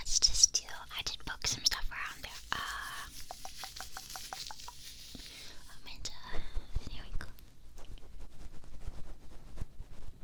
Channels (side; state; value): both; identical; correlation 1.00